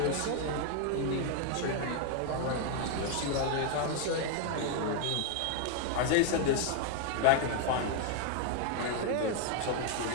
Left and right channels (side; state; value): both; different; correlation 0.00